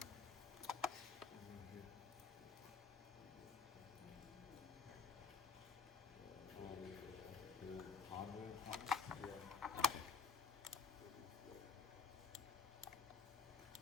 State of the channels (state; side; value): quieter; right; 5.9 dB